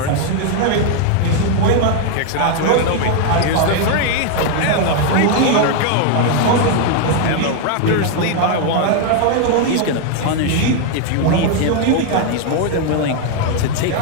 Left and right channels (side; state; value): both; different; correlation 0.00